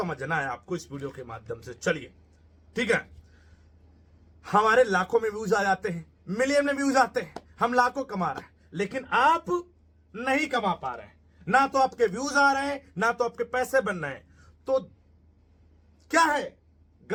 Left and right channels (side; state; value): both; identical; correlation 1.00